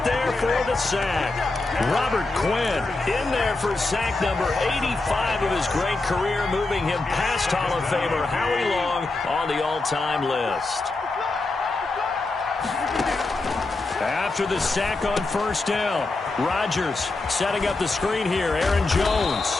there for the sack. Robert Quinn in there for sack number 85 of his great career, moving him past Hall of Famer Howie Long on the all-time list. After the sack on first down, Rodgers setting up the screen here. Aaron Jones.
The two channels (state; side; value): quieter; right; 3.3 dB